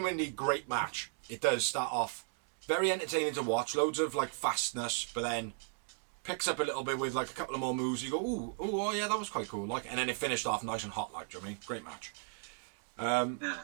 great match. It does start off very entertaining to watch. Loads of like fastness, but then picks up a little bit with like a couple of more moves. You go, ooh, oh yeah, that was quite cool. Like, and then it finished off nice and hot. Like, do you know what I mean? Great match.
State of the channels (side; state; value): left; silent; 54 dB below the other